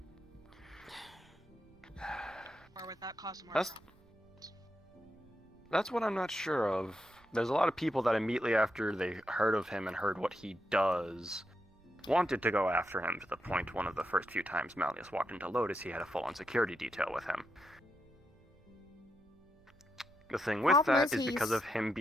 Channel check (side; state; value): right; noise; rumble, 29 dB below the sound